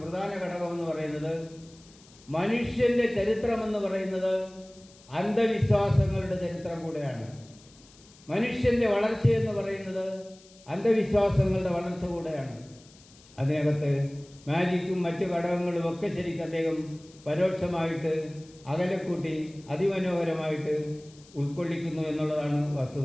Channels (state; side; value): noise; left; hiss, 25 dB below the sound